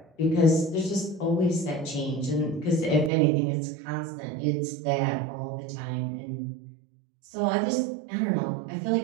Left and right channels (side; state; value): left; drops out; at 3.1 s